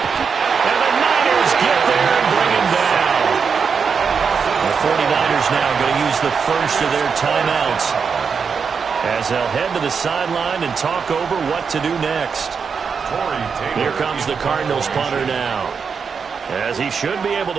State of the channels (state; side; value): quieter; left; 5.9 dB